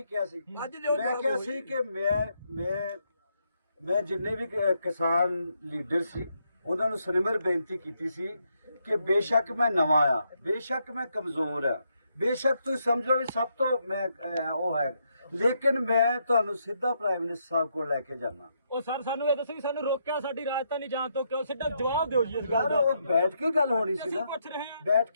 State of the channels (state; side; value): inverted; both; correlation -0.78